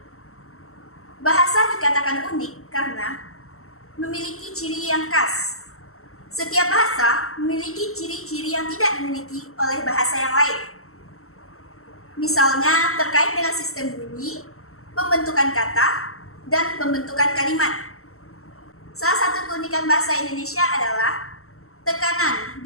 Bahasa dikatakan unik karena memiliki ciri yang khas. Setiap bahasa memiliki ciri-ciri yang tidak dimiliki oleh bahasa yang lain. Misalnya terkait dengan sistem bunyi, pembentukan kata, dan pembentukan kalimat. Salah satu keunikan bahasa Indonesia adalah tekanan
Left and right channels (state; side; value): late; right; 0.63 ms